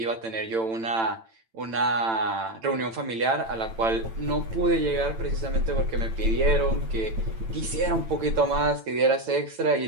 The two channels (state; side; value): late; left; 8.9 ms